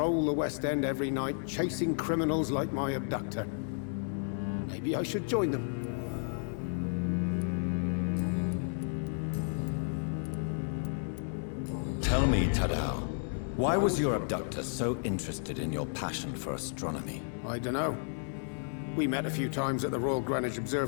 the West End every night, chasing criminals like my abductor. Maybe I should join them. Tell me, Tadao, why was your abductor so interested in your passion for astronomy? I don't know. We met a few times at the Royal Greenwich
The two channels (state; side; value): silent; right; digital silence